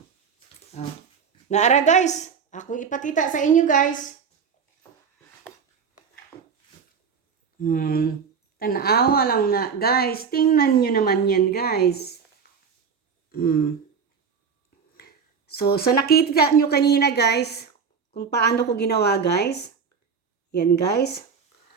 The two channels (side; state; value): left; quieter; 6.2 dB